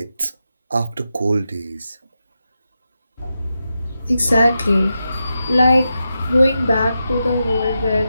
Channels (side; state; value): both; inverted; correlation -0.89